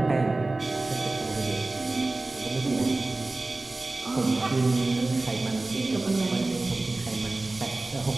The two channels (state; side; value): quieter; left; 3.1 dB